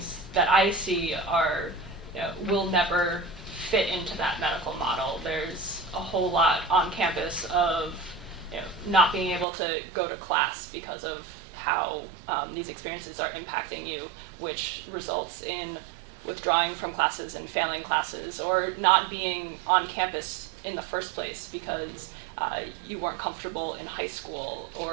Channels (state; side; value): drops out; left; at 9.5 s